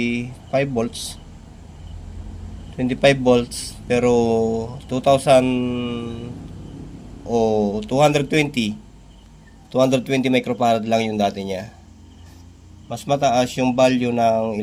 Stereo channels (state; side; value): identical; both; correlation 1.00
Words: volts. 25 volts pero 2000 o 220 microfarad lang yung dati niya. Mas mataas yung value ng